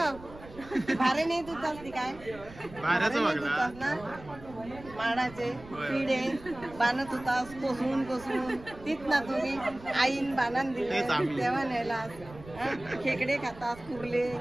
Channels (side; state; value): right; noise; rumble, 18 dB below the sound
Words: भारे नाही तू चालती काय? बाहेरच बघला. ना माडाचे होय. पिढे बाणत होतास कोसळून तीच ना तुम्ही आईन बाणान दिले तेच आम्ही. तेव्हा नेला. खेकडे खातात, कुर्ले,